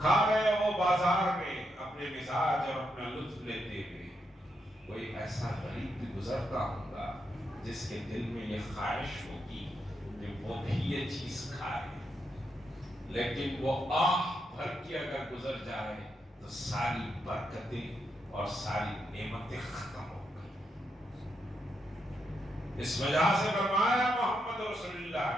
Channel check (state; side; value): normal; both; correlation 0.81